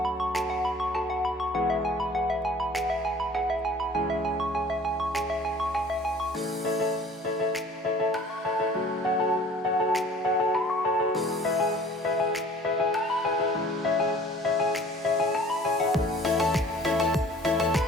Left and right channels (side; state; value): both; normal; correlation 0.49